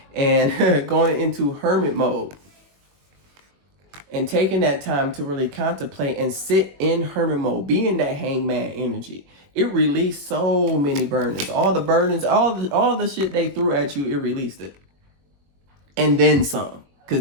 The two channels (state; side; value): late; left; 21 ms